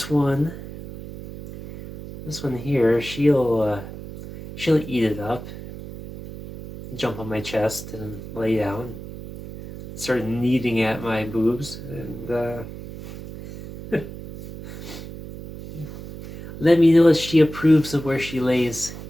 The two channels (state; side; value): noise; right; hum, 12 dB below the sound